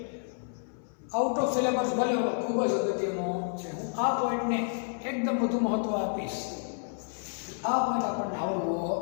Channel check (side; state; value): right; silent; 58 dB below the other